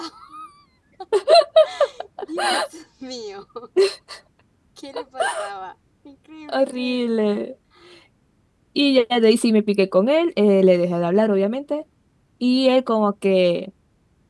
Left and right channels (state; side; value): identical; both; correlation 1.00